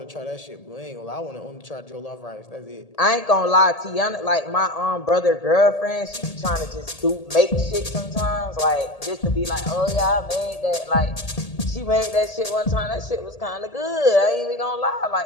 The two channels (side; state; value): right; late; 1.8 ms